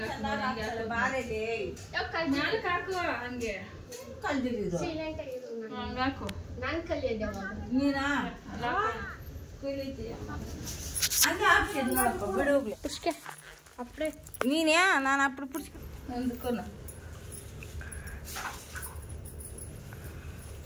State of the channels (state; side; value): identical; both; correlation 1.00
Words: ನಾನು ಕಲಿಯೋದು ಅಪ್ಪಡೆ ನೀನೇ ನಾನು ಅప్పుడు ಪುಡ್ಸ್ಕೊ ನಂದುಕೋನ